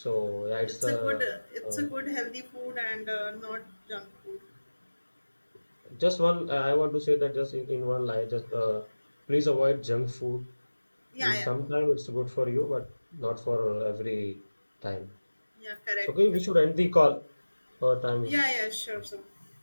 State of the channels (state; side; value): inverted; both; correlation -1.00